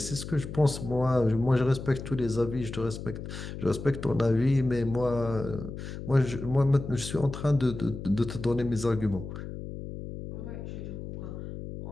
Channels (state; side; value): noise; left; hum, 9 dB below the sound